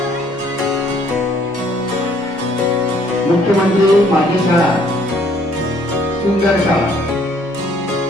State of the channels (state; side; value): normal; both; correlation 0.63